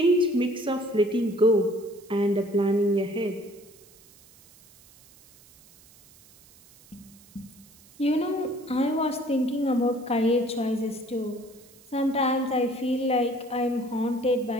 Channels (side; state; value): right; noise; hiss, 26 dB below the sound